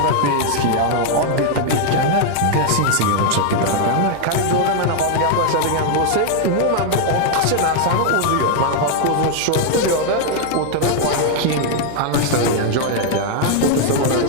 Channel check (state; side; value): different; both; correlation 0.00